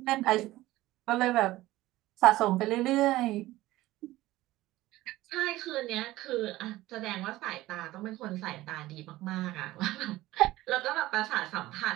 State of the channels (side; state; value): left; quieter; 17.0 dB